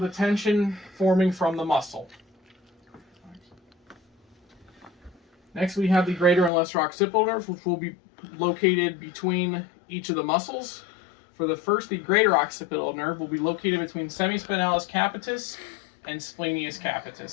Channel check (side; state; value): right; drops out; at 6.5 s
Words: tension forming from the muscle. Next, we have the greater and lesser occipital nerves, which will be located between each of the muscles. For the first, the greater occipital nerve will be located between semispinalis capitis and splenius